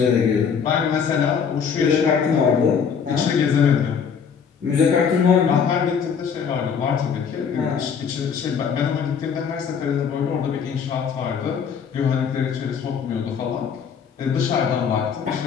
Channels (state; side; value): quieter; right; 6.8 dB